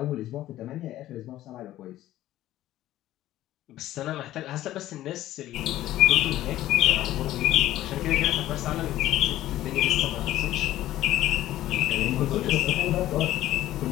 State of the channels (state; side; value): quieter; right; 14.2 dB